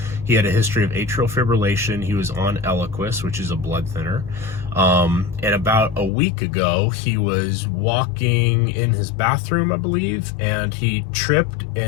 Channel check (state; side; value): drops out; right; at 6.1 s